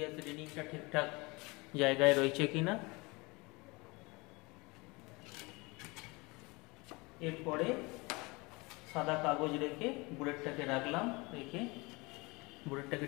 রিডিংটা ঠিকঠাক জায়গায় রয়েছে কিনা। এরপরে সাদা কাগজ রেখে বুলেটটাকে রাখলাম, রেখে বুলেটটাকে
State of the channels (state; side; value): quieter; right; 25.5 dB